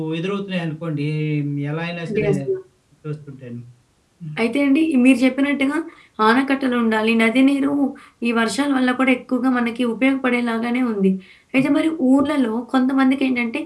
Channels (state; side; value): identical; both; correlation 1.00